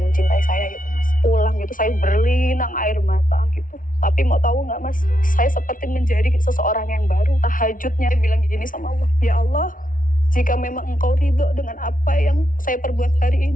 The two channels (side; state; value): right; late; 0.39 ms